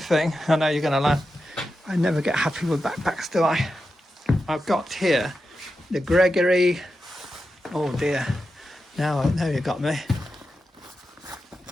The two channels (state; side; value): normal; both; correlation 0.90